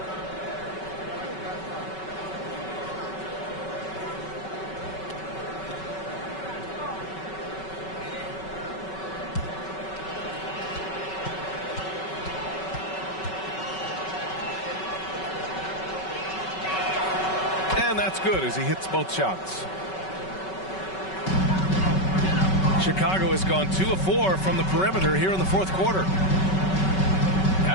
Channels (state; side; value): late; right; 5.3 ms